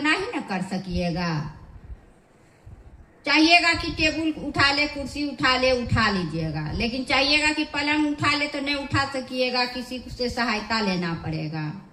ही न कर सकिएगा। चाहिएगा कि टेबल उठा ले, कुर्सी उठा ले, उठा लीजिएगा, लेकिन चाहिएगा कि पलंग उठा ले तो नहीं उठा सकिएगा, किसी से सहायता लेना पड़ेगा।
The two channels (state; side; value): identical; both; correlation 1.00